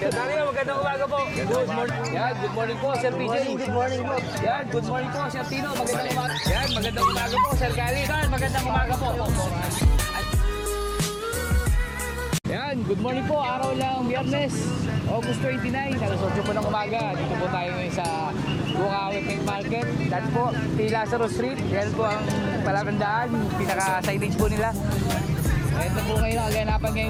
Dario, magandang umaga po. Good morning. Yan, good morning po, Sir PJ. Good morning po. Yan, good morning po, Sir Tino. Magandang umaga. Yan, magandang umaga po, Sir Kali. Yan, magandang umaga po. Yan, good morning po. Araw lang, Biyernes, August 29, alas 8 po ng umaga. Dito po tayo ngayon sa Bukawi Pet Market. Dati po, T. Lazaro Street. Yan po ang palatandaan, pinaka-signage po nila. Ito po ngayon ang kaganapan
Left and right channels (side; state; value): both; identical; correlation 1.00